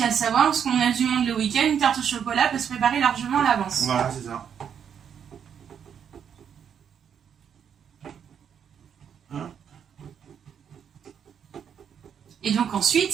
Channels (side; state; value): left; quieter; 8.0 dB